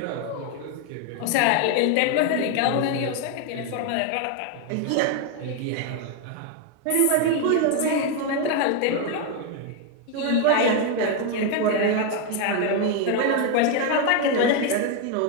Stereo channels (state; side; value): different; both; correlation 0.01